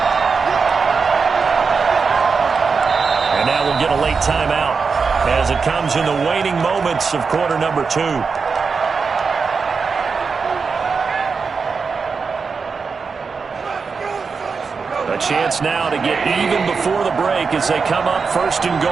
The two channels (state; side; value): quieter; left; 5.1 dB